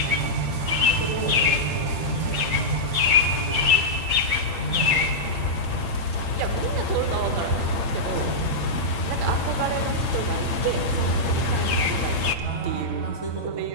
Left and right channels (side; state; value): left; late; 8.8 ms